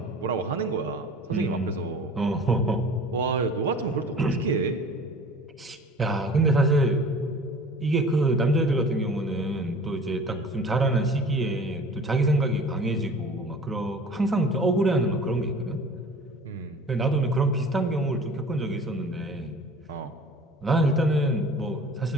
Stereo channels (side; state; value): both; normal; correlation 0.44